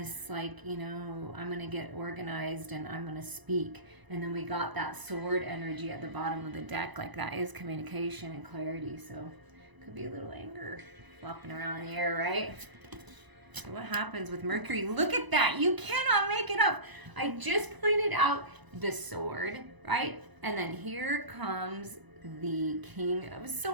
like, I'm going to get organized and I'm going to speak. And then we got that sword energy at the bottom of the deck. Like, that is communication and clarity. So could be a little anger flopping around in the air, right? So what happens with Mercury? Look at that. You cannot make it up. I just pointed out the sword, right? And then here comes the King of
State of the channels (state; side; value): late; left; 1.0 ms